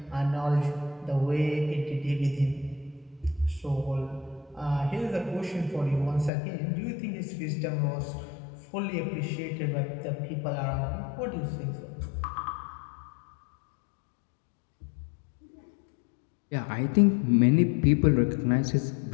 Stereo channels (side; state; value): right; drops out; at 6.3 s